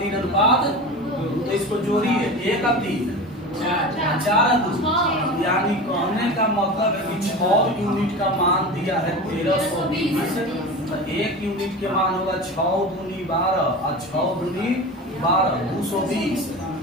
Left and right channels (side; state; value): both; normal; correlation 0.30